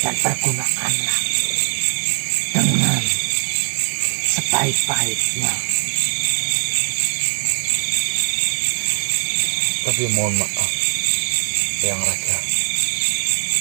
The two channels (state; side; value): silent; left; digital silence